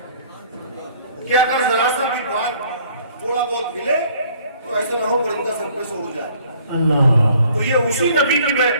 कि अगर जरा सा भी बात थोड़ा बहुत हिले तो ऐसा ना हो परिंदा सर पे से उड़ जाए। तो ये उसी नबी की मैं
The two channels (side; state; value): both; inverted; correlation -0.58